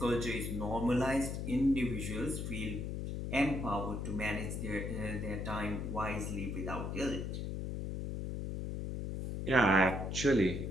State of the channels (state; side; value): noise; left; hum, 4 dB below the sound